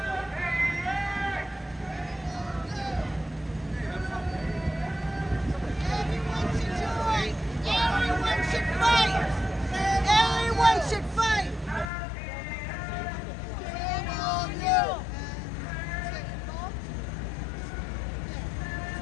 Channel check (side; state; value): right; drops out; at 11.9 s